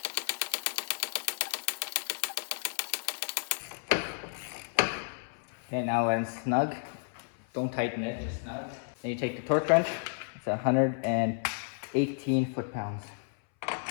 Okay, now when it's snug, don't tighten it, just snug. Then you take the torque wrench. It's 118 foot-pounds.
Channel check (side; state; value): right; silent; 56 dB below the other